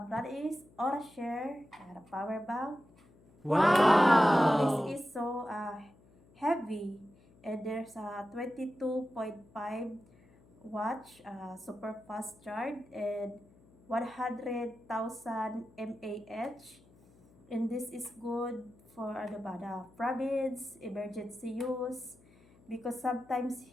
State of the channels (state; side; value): noise; left; hum, 27 dB below the sound